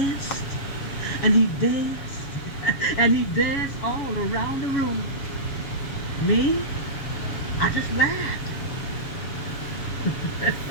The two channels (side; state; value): right; late; 7.1 ms